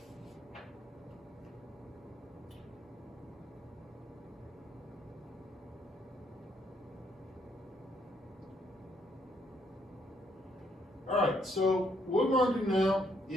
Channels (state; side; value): normal; both; correlation 0.71